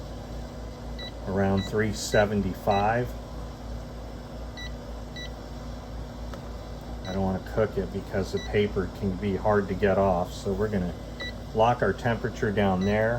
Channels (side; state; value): both; identical; correlation 1.00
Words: around 375. I don't want to cook it because the paper can be hard to get off. So we're going to lock our temperature down